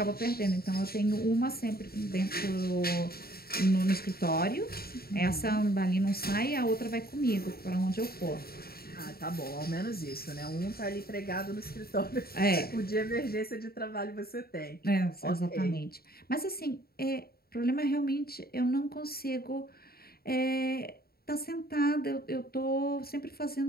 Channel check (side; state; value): right; late; 0.45 ms